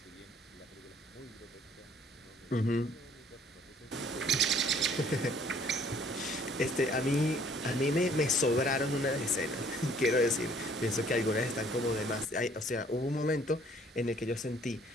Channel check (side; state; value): both; normal; correlation 0.59